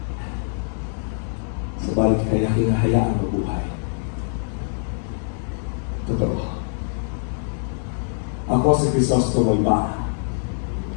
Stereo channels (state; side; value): silent; right; digital silence